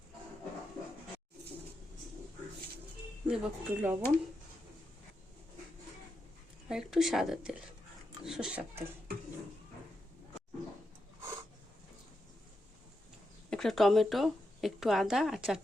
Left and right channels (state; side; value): normal; both; correlation 0.86